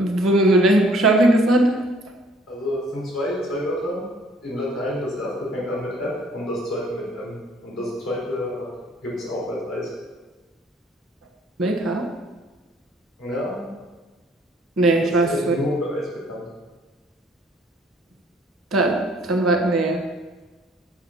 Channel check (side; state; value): both; normal; correlation 0.59